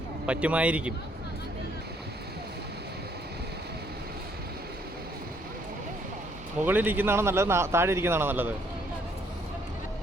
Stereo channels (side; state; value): both; normal; correlation 0.66